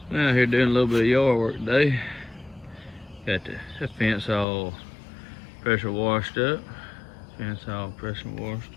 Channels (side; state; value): right; drops out; at 4.5 s